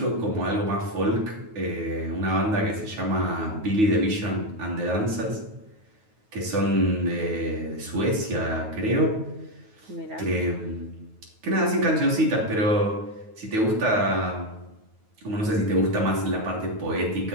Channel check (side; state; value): left; late; 9.4 ms